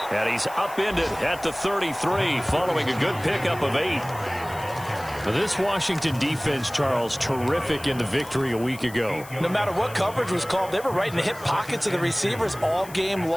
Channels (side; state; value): left; noise; hiss, 18 dB below the sound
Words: And he's upended at the 33 following a good pickup of 8. This Washington defense, Charles, terrific in the victory a week ago. No matter what coverage was called, they were right in the hip pockets of the receivers all game